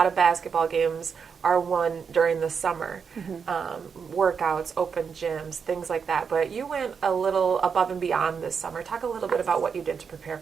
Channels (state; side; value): quieter; left; 6.3 dB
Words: of basketball games are won during the summer. Mm-hmm. Workouts, open gyms, things like that. But you went a little above and beyond this summer. Talk a little bit about what you did to prepare